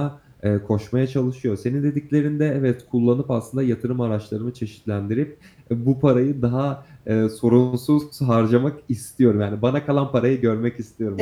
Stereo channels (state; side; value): identical; both; correlation 1.00